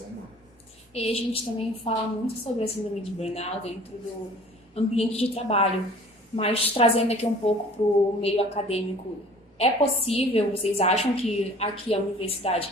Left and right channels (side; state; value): both; normal; correlation 0.49